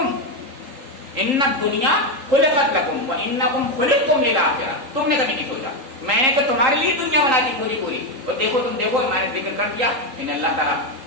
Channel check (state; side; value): late; left; 3.8 ms